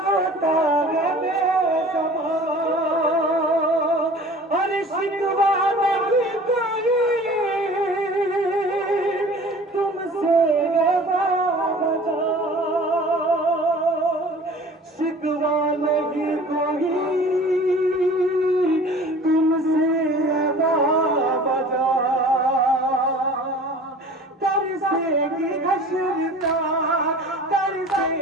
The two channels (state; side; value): normal; both; correlation 0.44